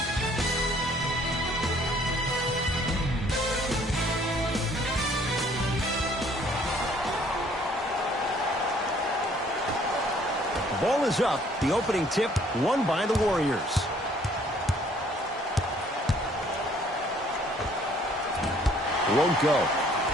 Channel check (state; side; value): normal; both; correlation 0.60